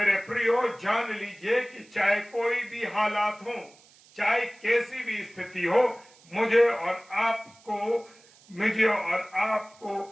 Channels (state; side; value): noise; right; hiss, 27 dB below the sound